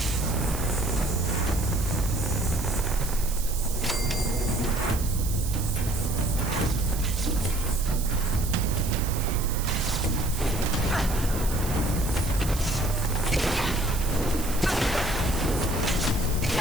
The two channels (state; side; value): noise; right; hiss, 9 dB below the sound